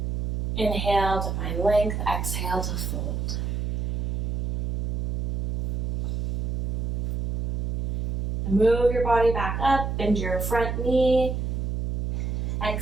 Inhale to find length, exhale to fold. And move your body back up, bend your front knee.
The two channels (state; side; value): noise; right; hum, 1 dB below the sound